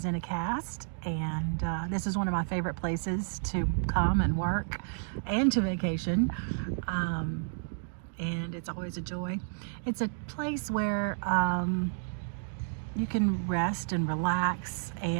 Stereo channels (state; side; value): silent; left; digital silence